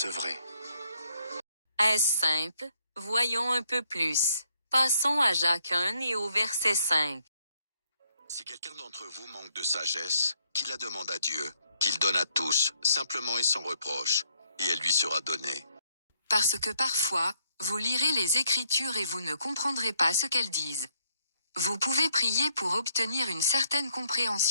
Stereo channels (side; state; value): both; inverted; correlation -0.72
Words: Est-ce simple? Voyons un peu plus. Passons à Jacques 1 et au verset 5. Si quelqu'un d'entre vous manque de sagesse, qu'il la demande à Dieu, qu'il donne à tous, simplement et sans reproche, et elle lui sera donnée. Parce que parfois, vous lirez les Écritures et vous ne comprendrez pas ce qu'elles disent. Vous pouvez prier pour obtenir une certaine